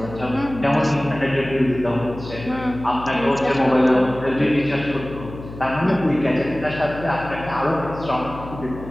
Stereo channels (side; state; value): left; noise; hum, 13 dB below the sound